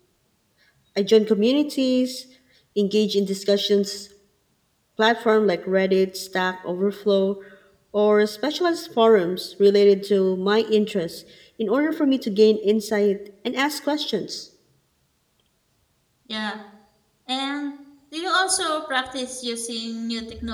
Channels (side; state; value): both; identical; correlation 1.00